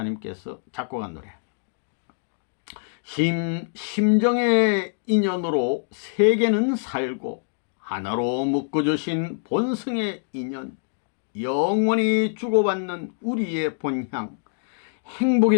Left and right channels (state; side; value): silent; right; digital silence